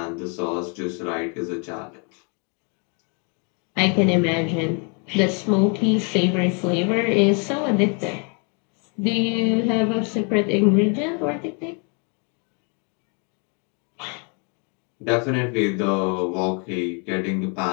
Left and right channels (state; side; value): quieter; right; 36.3 dB